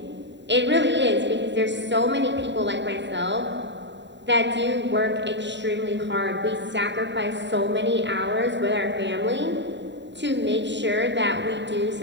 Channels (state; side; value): late; left; 0.52 ms